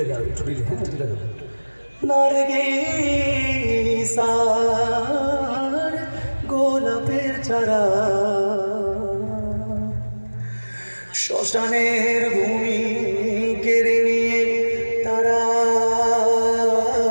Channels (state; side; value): inverted; both; correlation -1.00